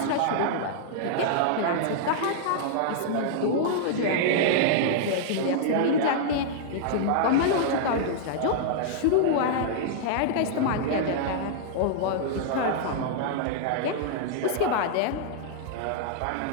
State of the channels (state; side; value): different; both; correlation -0.01